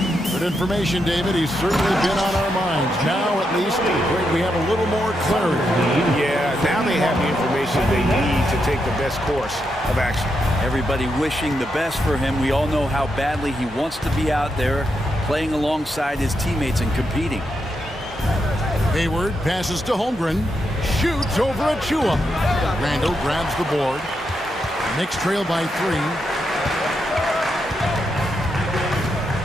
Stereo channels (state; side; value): normal; both; correlation 0.83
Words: Good information, David. He's certainly been on our minds. Now, at least, we have a little more clarity. Yeah, now they have the information they need to take the best course of action. Everybody wishing the best for him. We all know how badly he wants to be out there playing alongside his teammates and competing. Hayward passes to Holmgren. Shoots over Achua. Randall grabs the board. Knicks trail by 3.